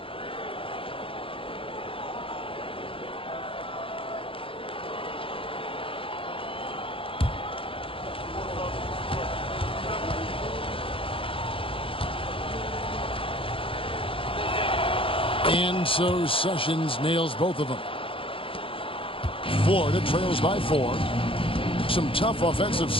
And so Sessions nails both of them. Florida trails by 4. Some tough offensive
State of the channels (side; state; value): right; late; 0.26 ms